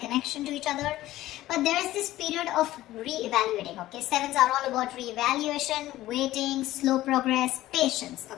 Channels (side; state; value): right; quieter; 15.5 dB